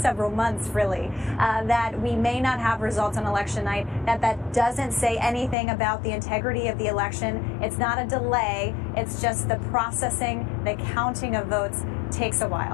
several months, really, that we may not have results on election night, that doesn't say anything about the integrity of the election. It's not a delay, it's just the processing, the counting of votes takes a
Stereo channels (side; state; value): right; drops out; at 5.6 s